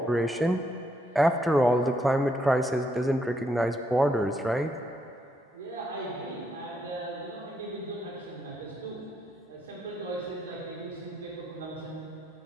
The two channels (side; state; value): both; normal; correlation 0.76